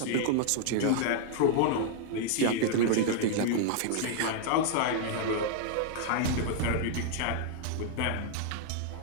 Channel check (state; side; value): different; both; correlation 0.00